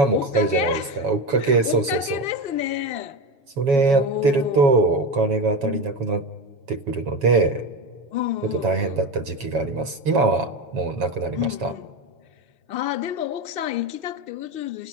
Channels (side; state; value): left; late; 7.2 ms